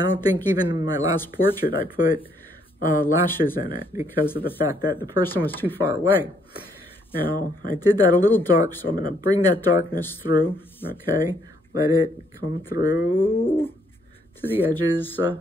think even in my last portrait I put lashes in it because of the fact that the person was too far away. Now, I did that a little dark, so I'm going to bring that darkness through, okay? Let it come through to the edges. And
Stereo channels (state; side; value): normal; both; correlation 0.69